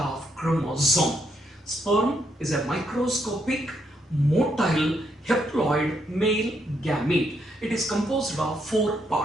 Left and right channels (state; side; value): normal; both; correlation 0.76